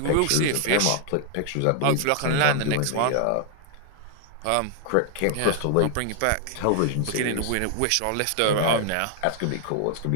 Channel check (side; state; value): both; different; correlation 0.00